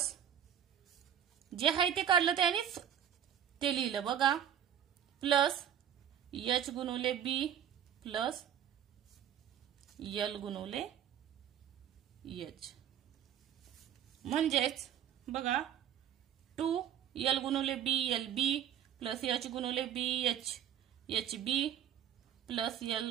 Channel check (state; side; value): quieter; left; 9.6 dB